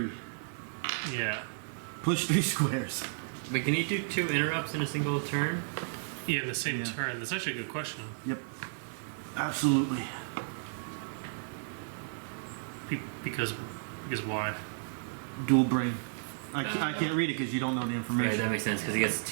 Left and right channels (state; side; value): silent; left; digital silence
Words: Yeah. Push 3 squares. Wait, can you do 2 interrupts in a single turn? Yeah, in the same Yeah. turn. That's actually a good question. Yep. Absolutely. Because why? Dual brain. I can't read it because you don't know the Right, information. that makes sense because he gets